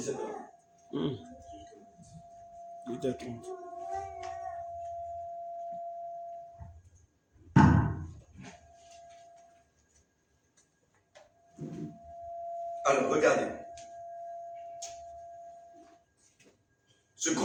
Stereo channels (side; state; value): both; identical; correlation 1.00